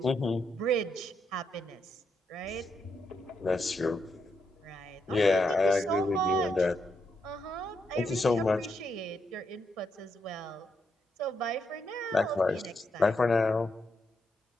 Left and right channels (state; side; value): normal; both; correlation 0.80